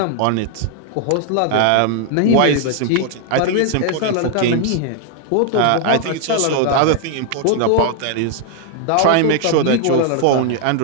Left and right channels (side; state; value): both; different; correlation 0.00